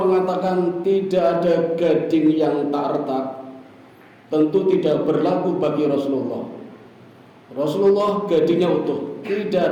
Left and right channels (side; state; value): both; identical; correlation 1.00